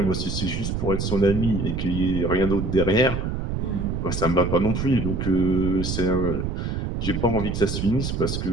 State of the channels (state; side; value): noise; right; rumble, 2 dB below the sound